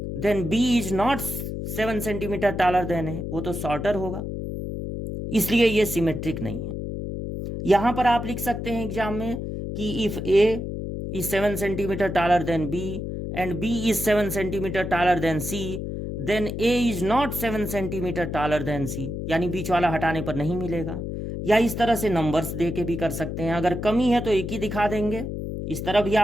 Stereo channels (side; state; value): left; noise; hum, 5 dB below the sound